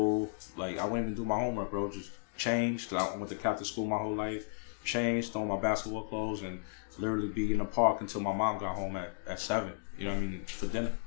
Like I wouldn't even do my homework, bro. Just change. Cause I went to Catholic school my whole life. Change, throw on my basketball clothes, and literally be in the park until my mom got home at 7. You know what I mean? For dinner.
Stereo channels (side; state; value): right; silent; digital silence